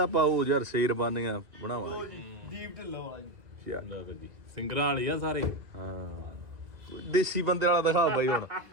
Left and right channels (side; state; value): left; late; 2.1 ms